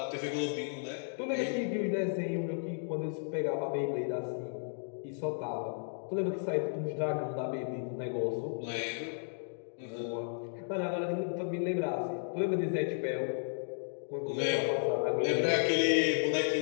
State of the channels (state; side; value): silent; right; digital silence